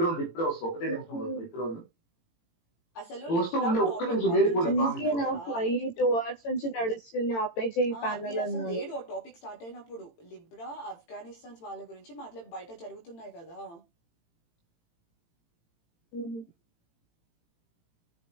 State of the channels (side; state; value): right; late; 18 ms